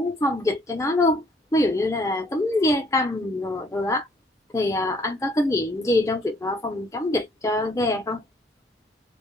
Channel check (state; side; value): normal; both; correlation 0.63